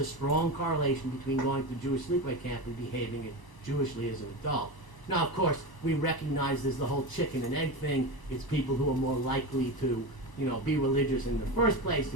strong correlation between going to Jewish sleepaway camp and behaving Jewishly as an adult. Now, of course, we recognize there's the whole chicken and egg thing. It's people who are more likely to, be religious in the first place,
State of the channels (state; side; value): late; right; 1.0 ms